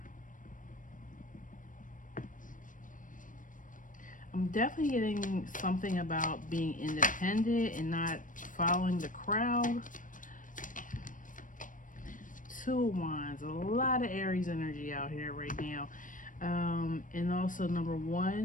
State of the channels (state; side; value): late; right; 0.38 ms